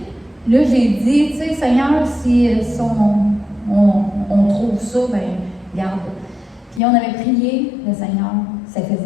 là, j'ai dit, tu sais, Seigneur, si on trouve ça, ben, regarde. Puis on avait prié, le Seigneur, ça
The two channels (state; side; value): drops out; right; at 6.8 s